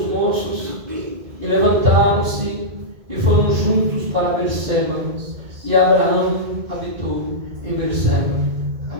moços e levantaram-se e foram juntos para Berseba, e Abraão habitou em Berseba.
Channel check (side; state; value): left; late; 2.0 ms